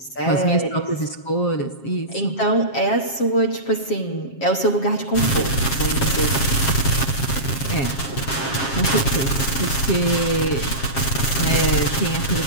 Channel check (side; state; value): right; late; 7.4 ms